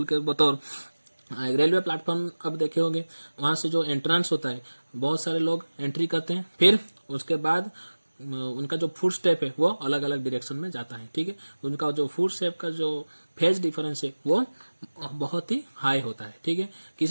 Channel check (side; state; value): both; inverted; correlation -1.00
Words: के बतौर रेलवे प्लेटफॉर्म, अब देखे होंगे वहां से जो एंट्रेंस होता है बहुत सारे लोग एंट्री करते हैं, फिर उसके बाद उनका जो फुट स्टेप है वो अलग अलग डायरेक्शन में जाता है, ठीक है। उनका जो फुट स्टेप का जो फेज डिफरेंस है वो बहुत ही हाई होता है, ठीक है।